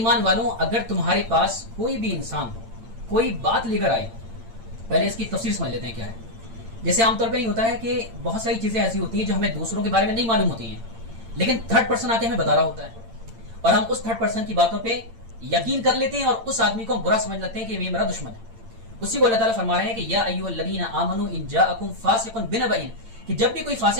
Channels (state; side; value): late; left; 8.8 ms